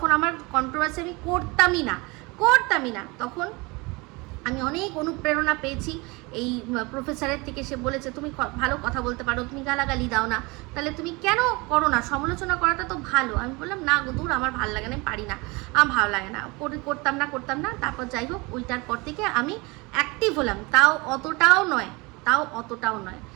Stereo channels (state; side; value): quieter; left; 25.6 dB